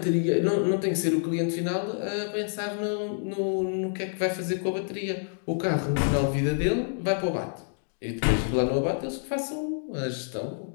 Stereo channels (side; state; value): right; silent; digital silence